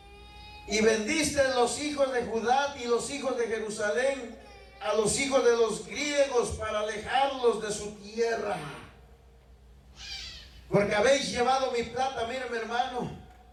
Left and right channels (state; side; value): identical; both; correlation 1.00